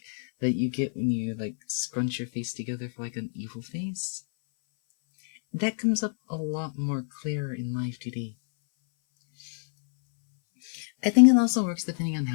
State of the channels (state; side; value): silent; right; 60 dB below the other